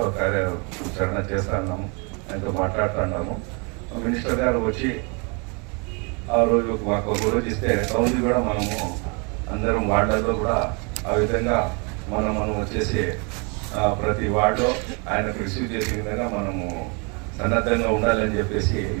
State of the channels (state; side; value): quieter; left; 33.0 dB